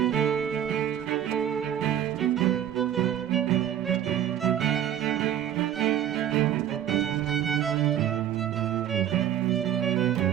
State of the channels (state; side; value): quieter; left; 10.8 dB